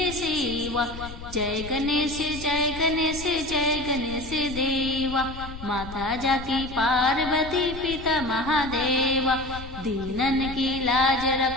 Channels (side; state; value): left; noise; rumble, 12 dB below the sound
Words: सेवा, जय गणेश जय गणेश जय गणेश देवा। माता जाकी पार्वती पिता महादेवा, दीनन की लाज